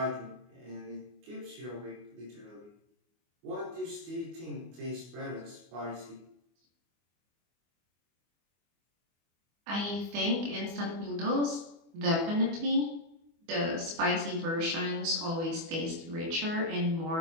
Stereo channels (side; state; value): left; late; 24 ms